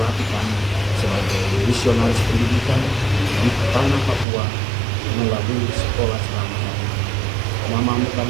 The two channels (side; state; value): left; drops out; at 4.2 s